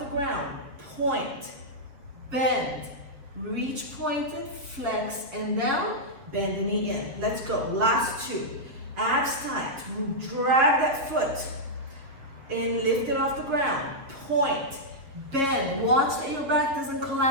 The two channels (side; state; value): left; late; 7.3 ms